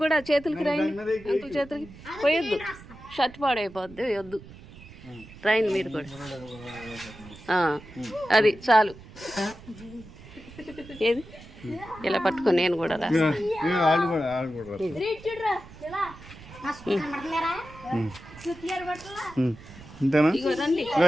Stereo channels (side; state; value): right; noise; rumble, 18 dB below the sound